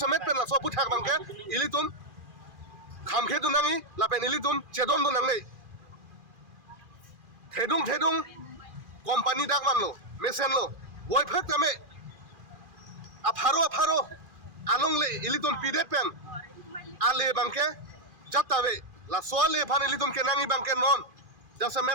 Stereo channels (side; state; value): left; late; 2.4 ms